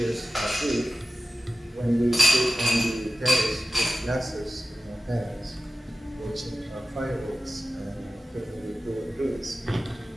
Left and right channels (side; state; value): both; normal; correlation 0.93